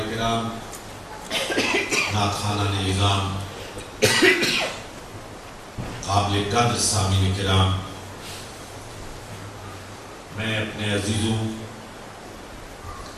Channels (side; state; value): both; identical; correlation 1.00